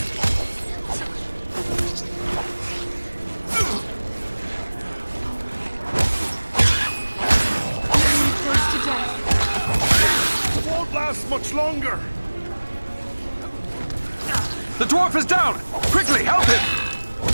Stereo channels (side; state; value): both; inverted; correlation -1.00